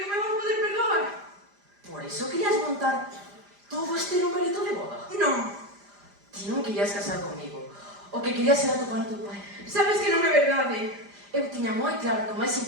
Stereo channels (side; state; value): left; late; 5.0 ms